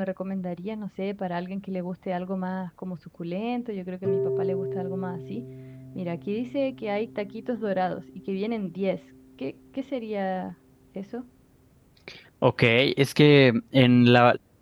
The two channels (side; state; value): both; identical; correlation 1.00